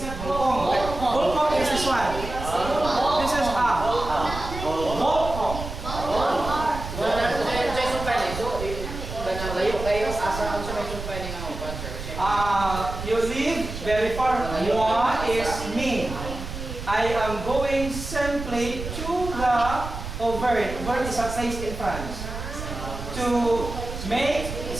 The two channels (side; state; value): right; noise; rumble, 8 dB below the sound